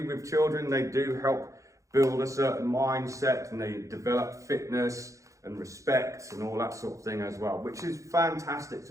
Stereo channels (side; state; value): left; late; 0.15 ms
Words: with children, they do help build a certain mindset and they develop fitness and respect and all that sort of thing as well, which is fantastic,